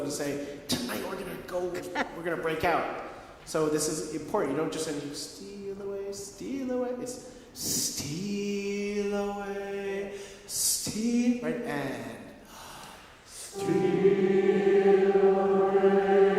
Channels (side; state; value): both; identical; correlation 1.00